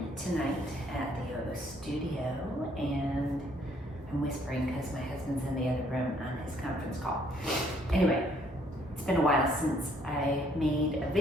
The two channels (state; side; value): normal; both; correlation 0.65